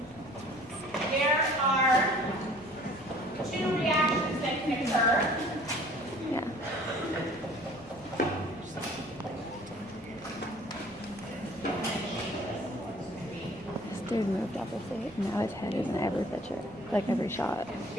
there are two reactions that can occur. This dude moved up a seat. Now his head is in every picture, like every shot. It's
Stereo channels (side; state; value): both; normal; correlation 0.51